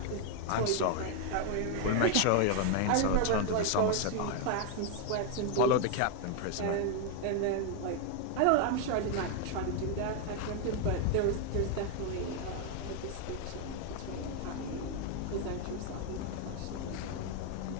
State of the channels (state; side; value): different; both; correlation 0.00